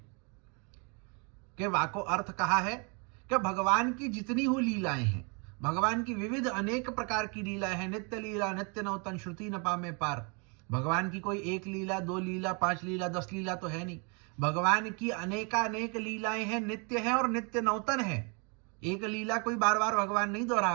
कि वाको अर्थ कहा है कि भगवान की जितनी हुई लीलाएं हैं, भगवान की विविध अनेक प्रकार की लीलाएं हैं, नित्य लीला नित्य नौतन श्रुति न पामे पार। भगवान की कोई एक लीला, दो लीला, 5 लीला, 10 लीला तो है नहीं। भगवान की अनेकानेक लीलाएं हैं, नित्य है और नित्य नौतन है। एक लीला कोई बार बार भगवान नहीं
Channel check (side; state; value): left; quieter; 34.1 dB